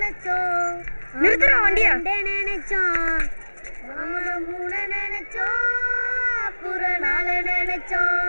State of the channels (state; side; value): inverted; both; correlation -1.00